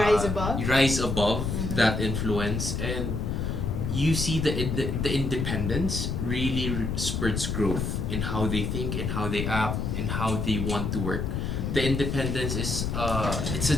above that influence, and you see the independence really spurts growth in how they think, in how they act, in how they want to work. The independence is it's a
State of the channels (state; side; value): noise; left; rumble, 1 dB below the sound